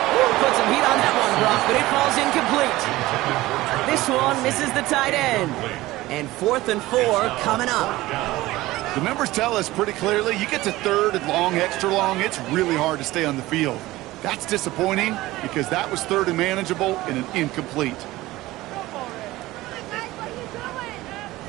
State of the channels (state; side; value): quieter; left; 18.0 dB